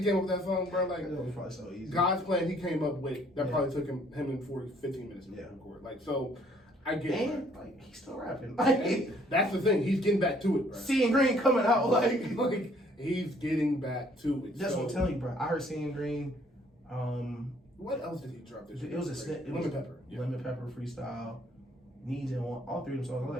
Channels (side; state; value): both; normal; correlation 0.62